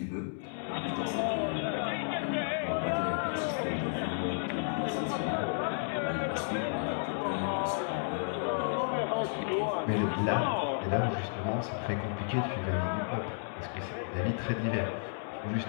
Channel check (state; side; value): silent; right; digital silence